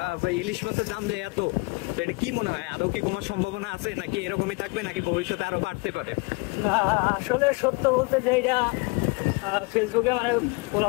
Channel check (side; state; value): right; quieter; 28.0 dB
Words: ইলিশ মাছের দাম যে এত, তো এটা কি মনে হয় আদৌ কি কমার সম্ভাবনা আছে নাকি এরকমই থাকবে নাকি ভবিষ্যতে আরো বাড়তে পারে? আসলে সত্য বলতে যে এটা ফেসবুকে মানে